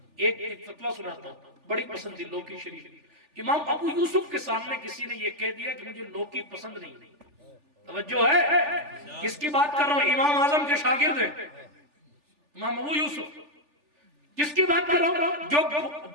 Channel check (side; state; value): left; late; 3.4 ms